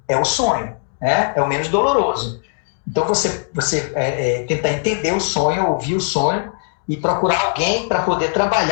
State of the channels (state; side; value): silent; right; digital silence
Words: é o sonho, né? É o menos doloroso. Então você tentar entender o sonho, ouvir o sonho e procurar alguém para poder